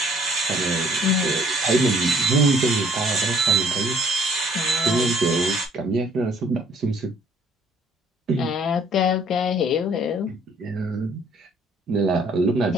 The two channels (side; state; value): both; normal; correlation 0.60